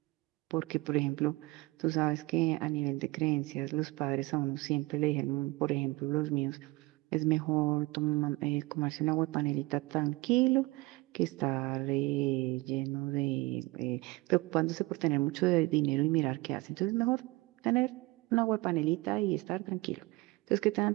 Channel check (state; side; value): quieter; left; 22.2 dB